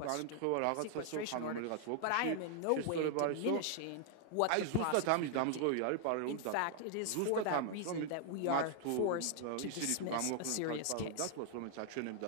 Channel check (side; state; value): both; different; correlation 0.00